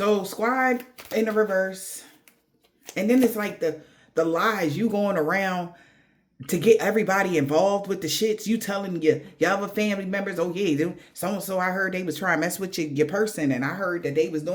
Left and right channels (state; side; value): identical; both; correlation 1.00